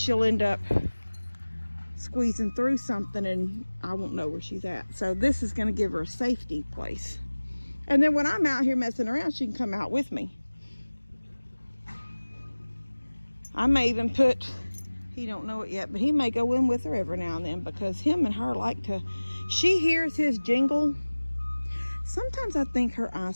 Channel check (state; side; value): inverted; both; correlation -1.00